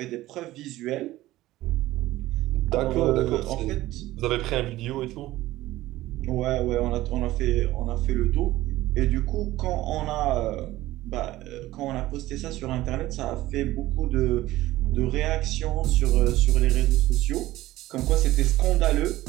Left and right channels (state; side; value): quieter; left; 16.4 dB